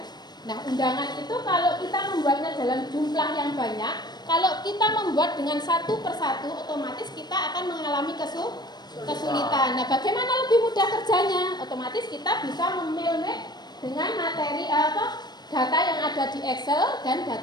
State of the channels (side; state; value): right; late; 0.20 ms